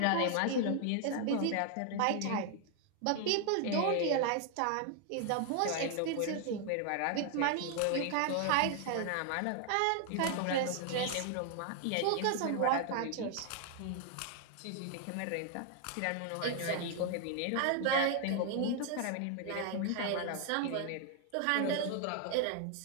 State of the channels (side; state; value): both; different; correlation 0.00